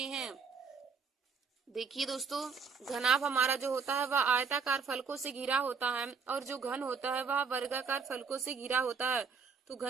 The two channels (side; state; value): left; quieter; 5.5 dB